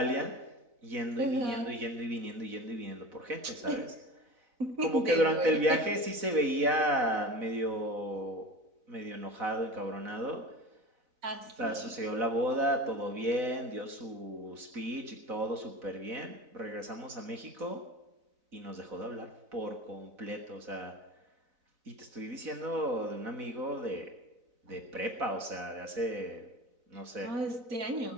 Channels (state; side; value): late; left; 4.0 ms